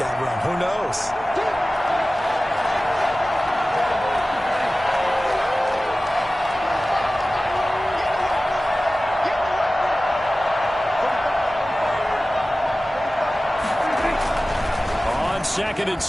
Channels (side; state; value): both; normal; correlation 0.96